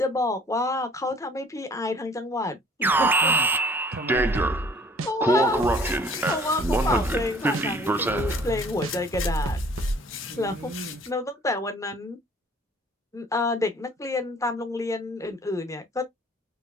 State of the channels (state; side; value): normal; both; correlation 0.53